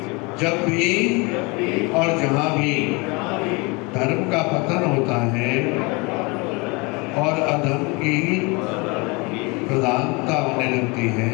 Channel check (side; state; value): right; quieter; 27.8 dB